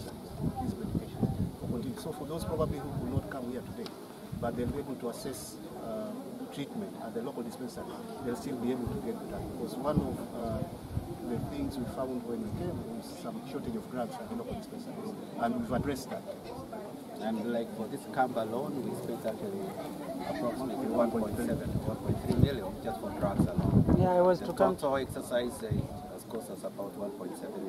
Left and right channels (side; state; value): both; identical; correlation 1.00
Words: these medications. So for those probably who will not come here today, but they'll be able to assess treatment at the local dispensary, they'll still be able to get the drug. Because one of the things we found when we came was some shortage of drugs at the local dispensaries, and we've addressed that. And like for this camp alone, we spent actually approximately 1.3 million just for drugs alone. Yeah, I was the to come. total exercise has cost us about 1.7,